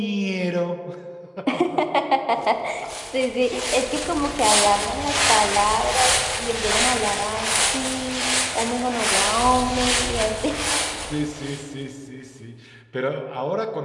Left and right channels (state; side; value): identical; both; correlation 1.00